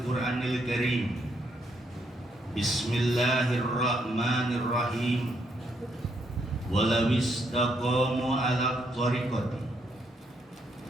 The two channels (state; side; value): normal; both; correlation 0.74